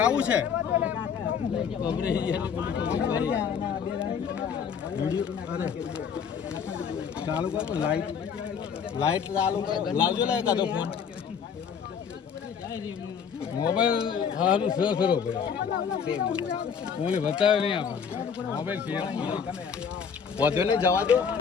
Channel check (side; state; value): right; quieter; 7.0 dB